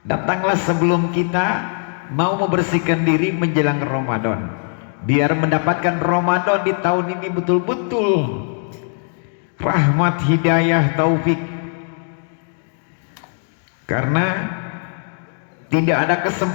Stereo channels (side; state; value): right; silent; 55 dB below the other